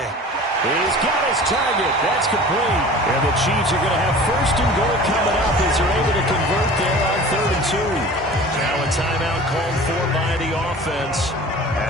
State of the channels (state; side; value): normal; both; correlation 0.41